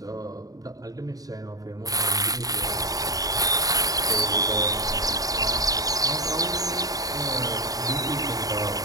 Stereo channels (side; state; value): left; late; 0.18 ms